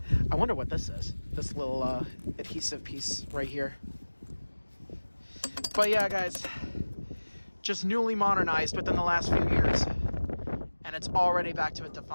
I wonder what this is. This little adhesive piece right here. But yeah, guys, just newly modernized within the last few years, and it's already back to a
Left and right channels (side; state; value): both; inverted; correlation -1.00